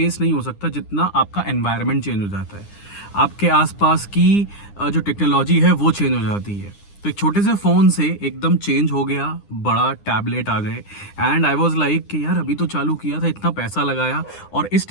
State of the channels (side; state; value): right; late; 9.9 ms